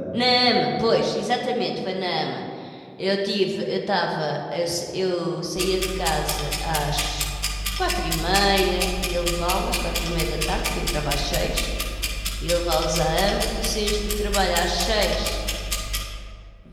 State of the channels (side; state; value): both; identical; correlation 1.00